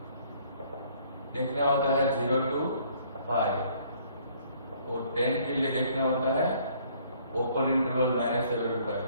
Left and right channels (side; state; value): both; inverted; correlation -0.61